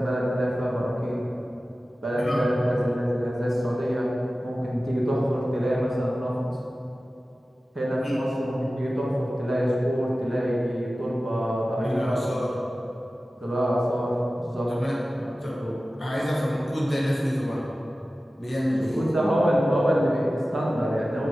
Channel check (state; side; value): normal; both; correlation 0.95